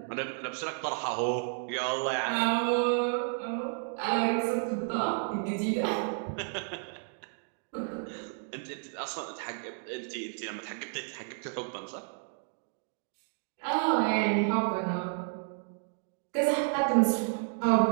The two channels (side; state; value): left; silent; 57 dB below the other